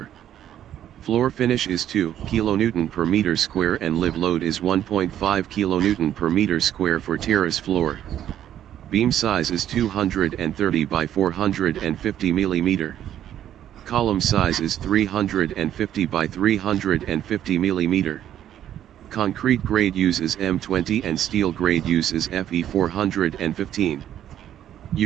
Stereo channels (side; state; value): left; quieter; 11.0 dB